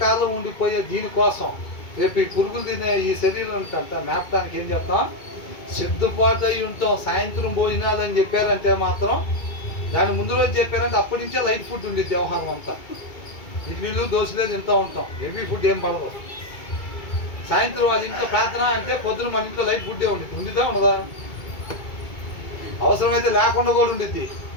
ఉండిపోయే దీనికోసం రేపు ఈ పురుగులు తినే ఈ శరీరం అంతా మేపడానికి ఏం చేస్తాం? సిద్ధపాటు అయి ఉంటాం. సాయంత్రం భోజనాలు అని చెప్పారంటే మాత్రం, దాని ముందు రోజు చెప్పారంటే అప్పటి నుంచే లైట్ ఫుడ్ ఉండేది. వ్యవహారం అంతా ఇడ్లీలు దోశలే తింటూ ఉంటాం, హెవీ ఫుడ్ ఏం పడదు. సాయంత్రం వాళ్ళ ఇంట్లో ప్రార్థన అంటే పొద్దున మన ఇంట్లో లైట్ ఫుడ్డే ఉండేది. ఉండిద్దా ఉండదా? అవసరమైతే లేకుండా కూడా ఉండిద్ది.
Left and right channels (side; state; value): right; late; 2.2 ms